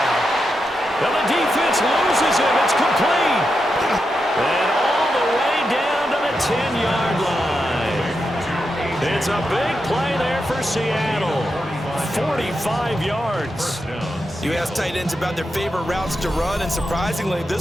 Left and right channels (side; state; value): both; normal; correlation 0.87